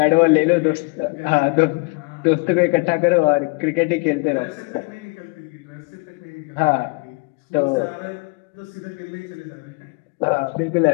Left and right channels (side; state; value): right; quieter; 29.6 dB